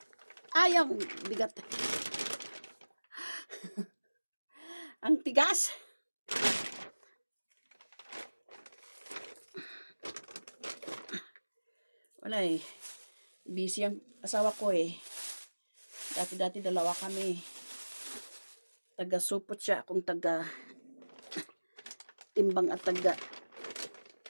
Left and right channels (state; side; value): inverted; both; correlation -1.00